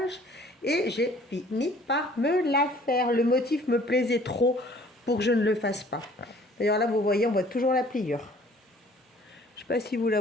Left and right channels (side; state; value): both; normal; correlation 0.55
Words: Et j'ai fini par me la faire. Le motif me plaisait trop pour que je ne le fasse pas. D'ailleurs là, vous voyez, on voit toujours la pliure. Je ne sais pas si vous la